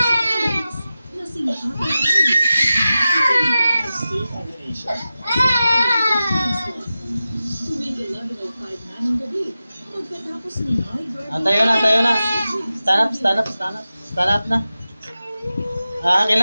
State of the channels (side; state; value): both; inverted; correlation -0.93